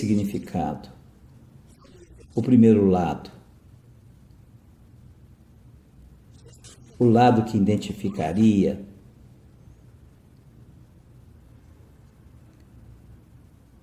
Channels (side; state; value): both; identical; correlation 1.00